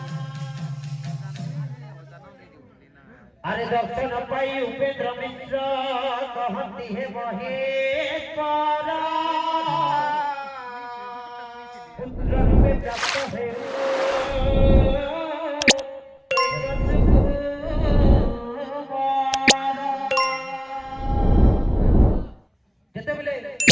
আরে দর্শন পাই উপেন্দ্র মিশ্র কহতি হে মহেশ্বর পুত্র রূপে প্রাপ্ত হে যেতেবেলে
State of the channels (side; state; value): both; identical; correlation 1.00